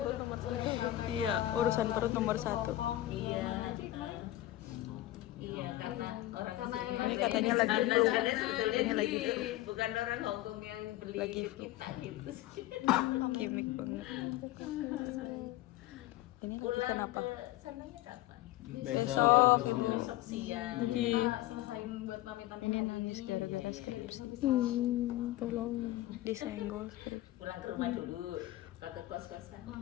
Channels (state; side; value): quieter; right; 15.8 dB